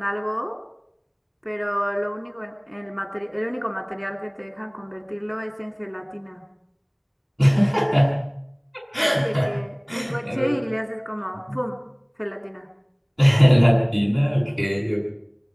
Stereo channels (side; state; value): both; identical; correlation 1.00